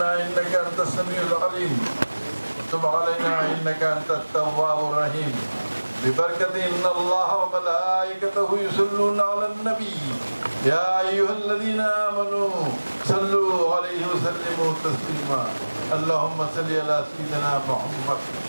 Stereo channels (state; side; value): inverted; both; correlation -1.00